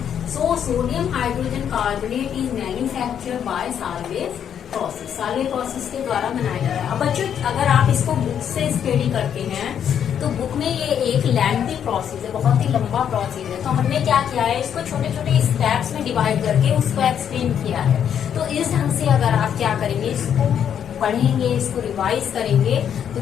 So sodium hydrogen carbonate is manufacture by Solvay process. Solvay process के द्वारा बनाया जा रहा है। अब बच्चों अगर आप इसको बुक से स्टडी करते हैं तो बुक में ये एक लेंथी प्रोसेस है, बहुत ही लंबा प्रोसेस है। तो हमने क्या किया है, इसको छोटे छोटे स्टेप्स में डिवाइड करके उसको एक्सप्लेन किया है। तो इस ढंग से अगर आप क्या करेंगे, इसको पढ़ेंगे, इसको रिवाइज करेंगे,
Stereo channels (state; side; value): quieter; right; 8.8 dB